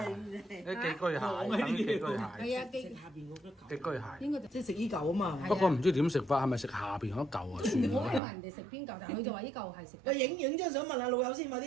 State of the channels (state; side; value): drops out; left; at 8.2 s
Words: 啲寄居蟹，等於寄居蟹。係啊，寄下邊嗰個寄居蟹。應該就即係食依嚿啊嘛。不過唔知點食法，係咪食下邊嗰嚿啊？算我問啦。人哋食邊嚿，但係佢就話呢嚿係食。喂，影張相問下老友先，快